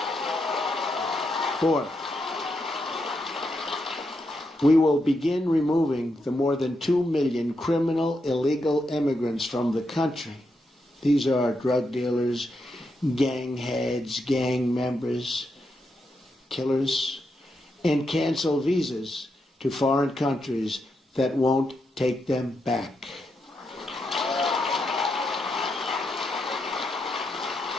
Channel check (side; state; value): both; normal; correlation 0.83